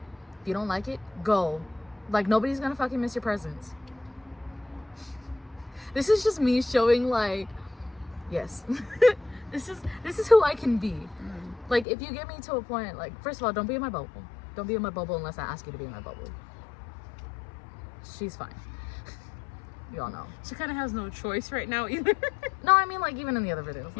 If you don't like it, go. Like nobody's gonna fucking miss your presence. This is just me showing like, yes, this is who I can be. Like if you get me to a point, like first of all, don't be in my bubble. Don't be in my bubble unless I ask you to be in my bubble. She's fine. You all know. She kind of has no choice right now either. No, I mean like even in the other videos.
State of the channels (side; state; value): right; drops out; at 11.9 s